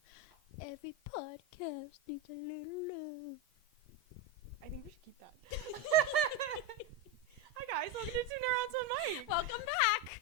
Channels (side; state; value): both; normal; correlation 0.10